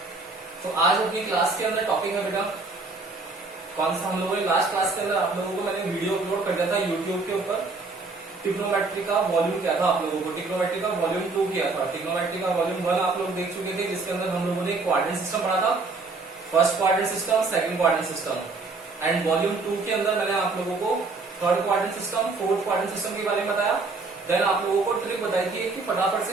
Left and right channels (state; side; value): quieter; left; 3.8 dB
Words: तो आज अपनी क्लास के अंदर टॉपिक है बेटा कौन सा। हम लोगों ने लास्ट क्लास के अंदर आप लोगों को मैंने वीडियो अपलोड कर दिया था यूट्यूब के ऊपर। ट्रिग्नोमेट्री का वॉल्यूम क्या था आप लोगों को, ट्रिग्नोमेट्री का वॉल्यूम 2 किया था। ट्रिग्नोमेट्री का वॉल्यूम 1 आप लोग देख चुके थे, जिसके अंदर हम लोगों ने क्वाड्रेंट सिस्टम पढ़ा था, first quadrant system, second quadrant system. And volume 2 के अंदर मैंने आप लोगों को third quadrant system, fourth quadrant system के बारे में बताया। देन आप लोगों को ट्रिक बताई थी कि फटाफट